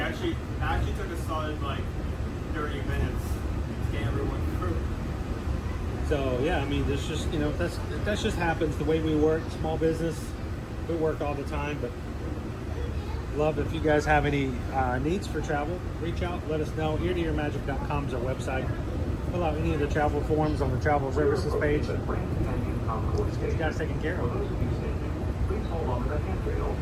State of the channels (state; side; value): identical; both; correlation 1.00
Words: actually took a solid, like, 30 minutes to get everyone through. So yeah, I mean, there's just that just happens the way we work. Small business, we work all the time, but love if you guys have any needs for travel, reach out, let us know. eartoyourmagic.com is our website. Fill out any of the travel forms on the travel services page. Let's get you guys taken care of.